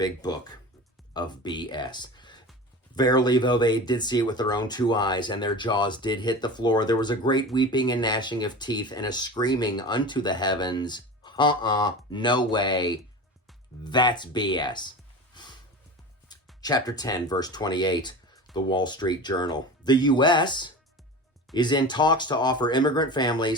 book of BS. Verily, though they did see it with their own two eyes, and their jaws did hit the floor, there was a great weeping and gnashing of teeth, and a screaming unto the heavens, no way, that's BS. Chapter 10, verse 28, the Wall Street Journal. The U.S. is in talks to offer immigrant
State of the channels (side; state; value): both; normal; correlation 0.32